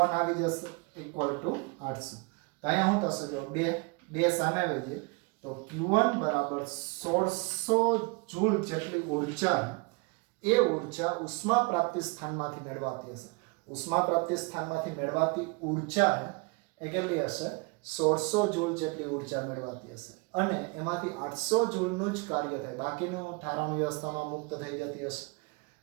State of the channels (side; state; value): left; quieter; 29.0 dB